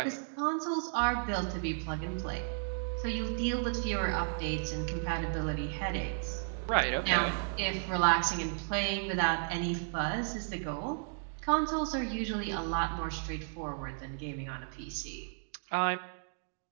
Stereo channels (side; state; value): left; silent; digital silence